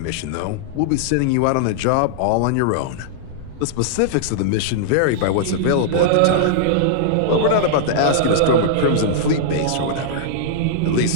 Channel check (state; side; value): different; both; correlation -0.01